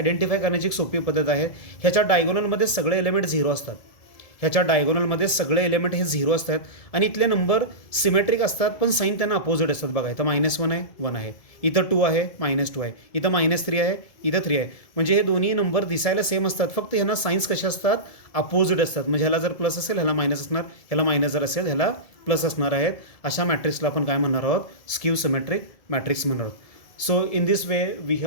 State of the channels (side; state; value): right; late; 1.7 ms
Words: करण्याची एक सोपी पद्धत आहे. ह्याच्या डायगोनलमध्ये सगळे एलिमेंट 0 असतात. ह्याच्या डायगोनलमध्ये सगळे एलिमेंट हे 0 असतात आणि इथले नंबर सिमेट्रिक असतात पण साईन त्यांना अपोजिट असतात. बघा इथं -1 आहे 1 आहे, इथं 2 आहे -2 आहे, इथं -3 आहे इथं 3 आहे. म्हणजे हे दोन्ही नंबर दिसायला सेम असतात, फक्त ह्यांना साईन्स कसे असतात, अपोजिट असतात. म्हणजे ह्याला जर प्लस असेल ह्याला मायनस असणार, ह्याला मायनस जर असेल ह्याला प्लस असणार आहेत. अशा मॅट्रिक्सला आपण काय म्हणणार आहोत, स्क्यू सिमेट्रिक मॅट्रिक्स म्हणणार आहोत. So in this way we